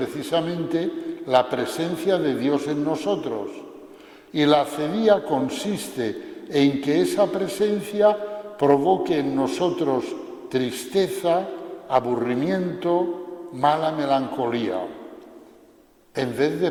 la presencia de Dios en nosotros, y la acedía consiste en que esa presencia provoque en nosotros tristeza, aburrimiento, mala melancolía, en vez de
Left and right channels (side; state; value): both; identical; correlation 1.00